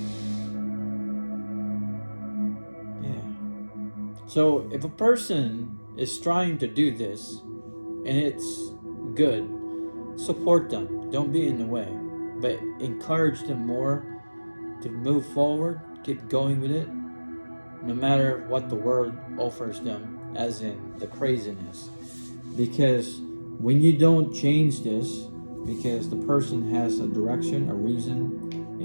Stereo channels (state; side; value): inverted; both; correlation -1.00